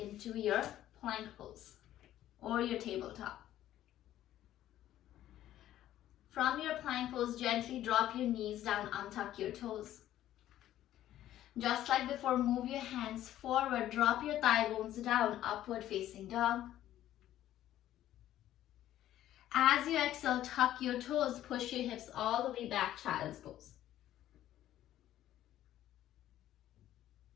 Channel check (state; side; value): quieter; right; 12.9 dB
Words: your plank pose or your tabletop. From your plank pose, gently drop your knees down, untuck your toes. Just like before, move your hands forward, drop your thigh bones down, upward facing dog. As you exhale, tuck your toes, push your hips all the way back, child's pose.